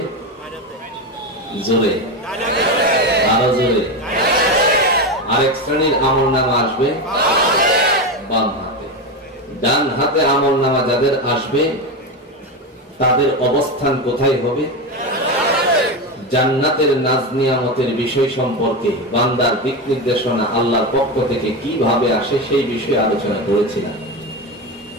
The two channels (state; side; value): normal; both; correlation 0.17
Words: জোরে, আরো জোরে, আরেক শ্রেণীর আমলনামা আসবে বাম হাতে। ডান হাতে আমলনামা যাদের আসবে তাদের অবস্থান কোথায় হবে? জান্নাতের নাজ নিয়ামতের বিষয় সম্পর্কে বান্দার দিক নির্দেশনা আল্লাহর পক্ষ থেকে কিভাবে আসে সেই বিষয়ে আলোচনা করেছিলাম।